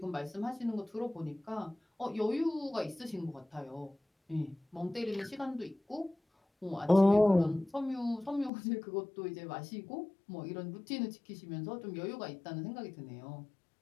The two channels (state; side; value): drops out; right; at 8.5 s